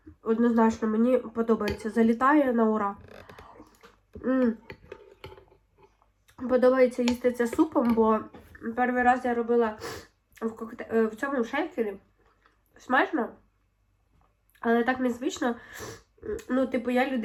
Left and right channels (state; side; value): identical; both; correlation 1.00